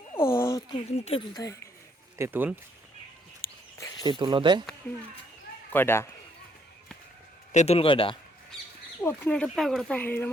ও তেঁতুল থাকে তেঁতুল দে কয়টা তেঁতুল কয়টা ওখানে একটা প্যাকেট থাকে এর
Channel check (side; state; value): both; normal; correlation 0.70